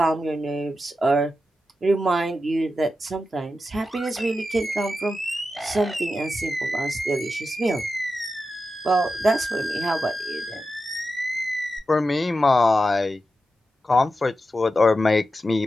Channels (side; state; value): both; normal; correlation 0.90